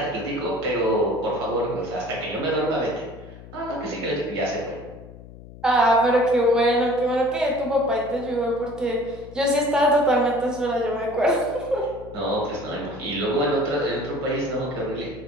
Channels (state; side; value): noise; left; hum, 17 dB below the sound